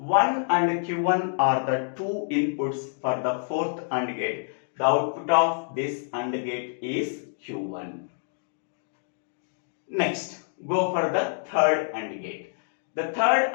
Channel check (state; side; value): silent; right; digital silence